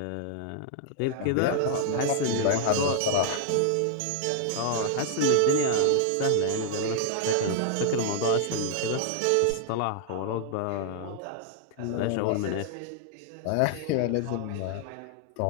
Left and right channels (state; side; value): different; both; correlation 0.00